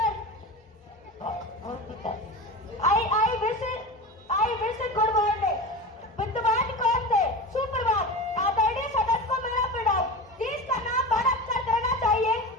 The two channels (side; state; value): both; normal; correlation 0.28